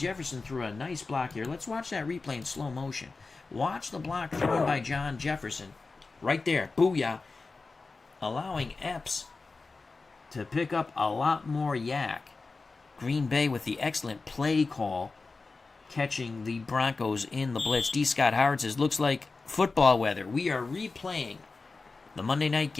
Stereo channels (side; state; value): right; quieter; 3.9 dB